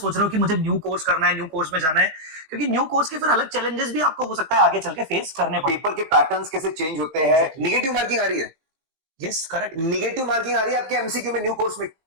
रहे हो कि मुझे न्यू कोर्स करना है, न्यू कोर्स में जाना है? क्योंकि न्यू कोर्स के फिर अलग चैलेंजेस भी आपको हो सकता है आगे चल के फेस करने पड़े। पेपर के पैटर्न्स कैसे चेंज होते हैं, नेगेटिव मार्किंग आ रही है, यस करेक्ट, नेगेटिव मार्किंग आ रही है आपके एमसीक्यू में न्यू कोर्स में।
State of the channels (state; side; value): late; left; 19 ms